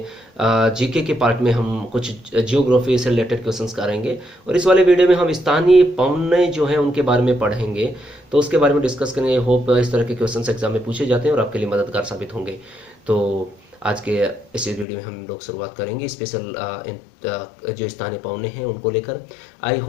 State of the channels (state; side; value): drops out; right; at 14.9 s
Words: जीके के पार्ट में हम कुछ जियोग्राफी से रिलेटेड क्वेश्चंस करेंगे। और इस वाले वीडियो में हम स्थानीय पौने जो हैं उनके बारे में पढ़ेंगे, तो उसके बारे में डिस्कस करेंगे। होप इस तरह के क्वेश्चंस एग्जाम में पूछे जाते हैं और आपके लिए मददगार साबित होंगे। तो आज के इस वीडियो में हम लोग शुरुआत करेंगे स्पेशल जो स्थानीय पौने हैं उनको लेकर। आई